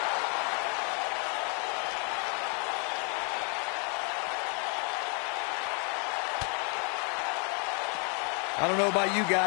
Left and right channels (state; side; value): quieter; right; 37.1 dB